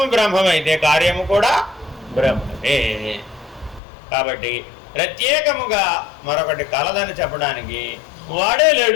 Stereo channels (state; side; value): drops out; right; at 3.8 s